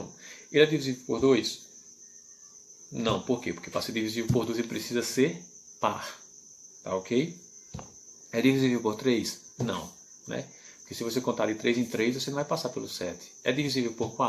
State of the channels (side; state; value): both; identical; correlation 1.00